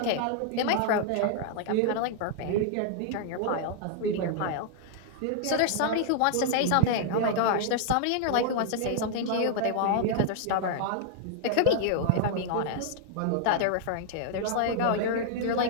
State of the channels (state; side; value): different; both; correlation -0.01